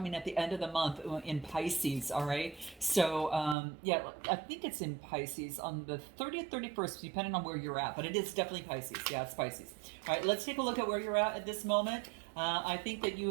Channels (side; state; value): left; drops out; at 3.6 s